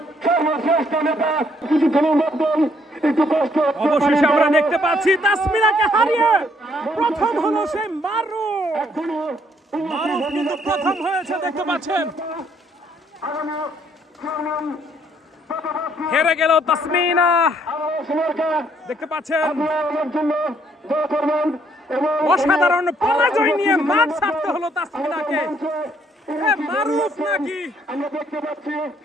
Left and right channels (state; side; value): normal; both; correlation 0.67